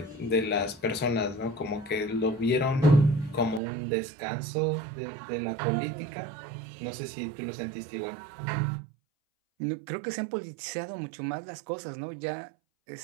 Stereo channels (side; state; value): left; drops out; at 3.6 s